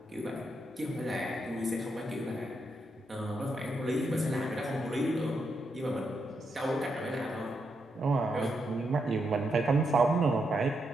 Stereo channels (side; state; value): both; normal; correlation 0.81